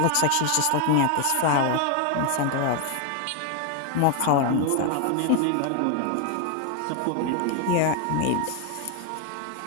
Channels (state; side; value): different; both; correlation 0.01